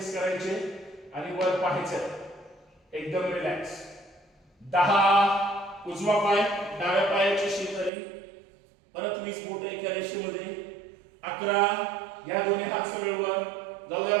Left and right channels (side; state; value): left; drops out; at 7.9 s